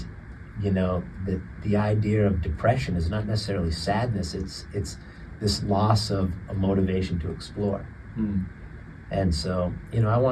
you know, the idea of depression is not necessarily sadness, it's this loss of a motivation to explore. And so, you know, I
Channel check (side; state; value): both; identical; correlation 1.00